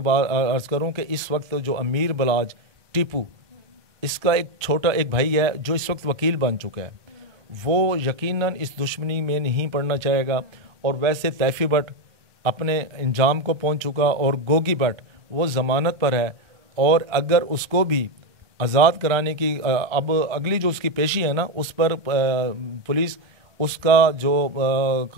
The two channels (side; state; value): left; late; 1.2 ms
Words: عرض کروں کہ اس وقت جو امیر بلاج ٹیپو، اس کا ایک چھوٹا ایک بھائی ہے جو اس وقت وکیل بن چکا ہے، وہ یقیناً اس دشمنی میں نہیں پڑنا چاہے گا۔ اور ویسے طیفی بٹ اپنے انجام کو پہنچ چکا، اور گوگی بٹ وہ ضمانت پر ہے، اور اگر اس کو بھی آزاد کرانے کی اب اگلی جو اس کی پیشی ہے نا، اس پر پولیس اس کا جو